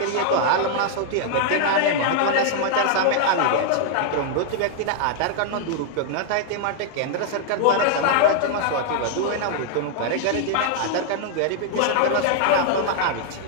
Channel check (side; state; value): both; different; correlation -0.01